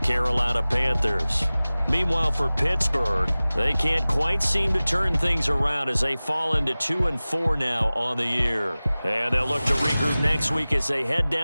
Panthers. Meanwhile, for Pittsburgh, they can't quite seem to turn things around as they fall into 2-4 now on the year. And they'll look to regroup next week as they head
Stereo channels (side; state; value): both; inverted; correlation -0.98